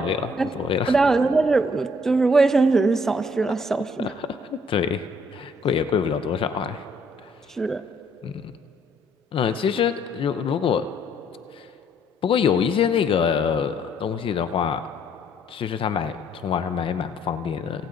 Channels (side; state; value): both; normal; correlation 0.65